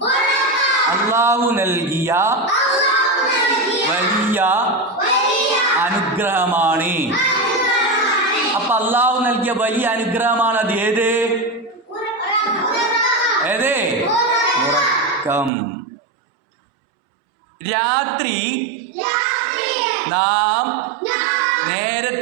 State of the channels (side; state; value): left; drops out; at 15.5 s